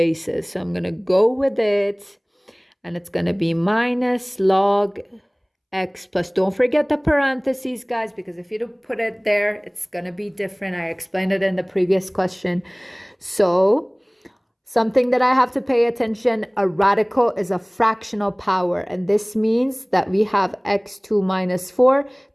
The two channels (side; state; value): both; identical; correlation 1.00